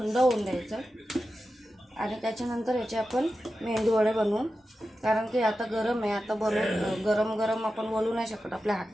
होऊन द्यायचं. आणि त्याच्यानंतर याचे आपण मेंदूवडे बनवून, कारण की आता गरम आहे, आता गरम आपण वळू नाही शकत, आपल्या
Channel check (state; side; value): normal; both; correlation 0.92